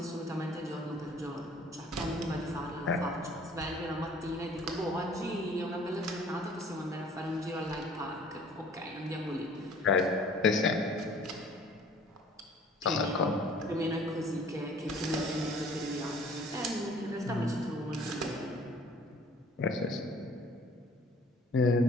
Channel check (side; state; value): both; normal; correlation 0.53